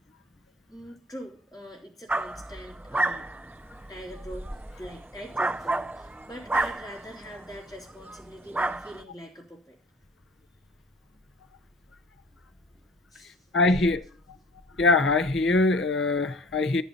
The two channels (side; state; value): both; normal; correlation 0.49